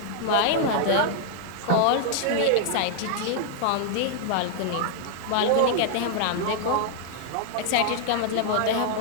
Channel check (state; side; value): different; both; correlation 0.00